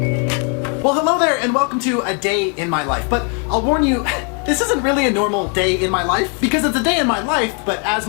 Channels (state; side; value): quieter; right; 38.8 dB